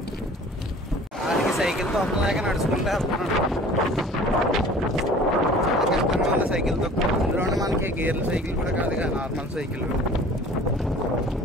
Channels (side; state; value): both; normal; correlation 0.47